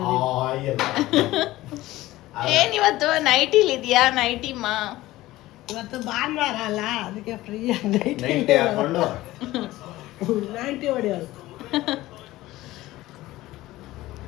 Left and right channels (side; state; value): right; quieter; 17.1 dB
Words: ಏನ್ ಇವತ್ತು ನೈಟಿಲ್ ಇದೆಯಾ? ನೈಟಿಮ್ಮ ಇವತ್ತು ಭಾನುವಾರ ಅಲ್ಲ, ಅದಕ್ಕೆ ಫ್ರೀ ನೈಂಟಿ ಹಾಕೊಂಡು 90 ಹೊಡೆಯೋದು.